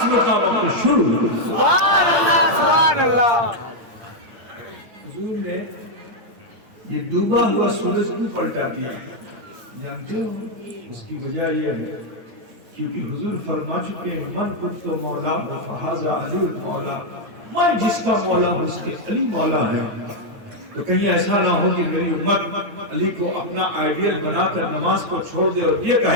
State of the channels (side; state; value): left; late; 9.0 ms